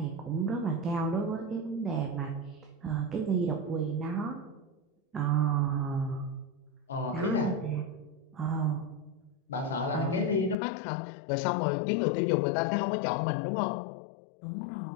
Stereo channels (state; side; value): drops out; right; at 10.6 s